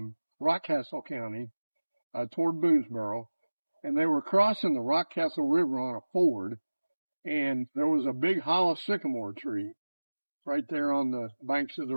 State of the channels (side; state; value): both; inverted; correlation -1.00